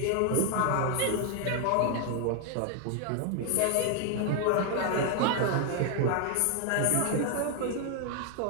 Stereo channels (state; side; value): different; both; correlation 0.00